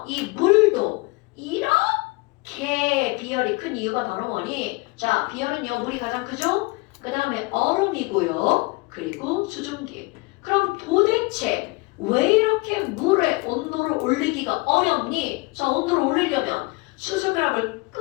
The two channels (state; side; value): quieter; right; 25.4 dB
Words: 이 물도 이렇게 비열이 큰 이유가 바로 뭐니? 자, 비열은요, 물이 가장 크죠? 그 다음에 얼음이고요. 그리고 수증기. 그럼 도대체 왜 이렇게 물의 온도를 올리기가 어렵니? 자, 온도를 올리려면 수소결합을